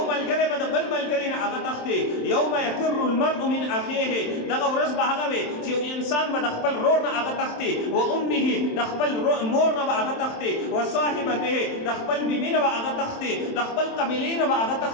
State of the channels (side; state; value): right; late; 27 ms